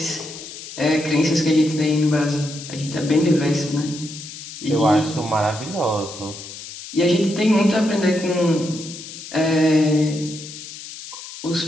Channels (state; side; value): noise; left; hiss, 13 dB below the sound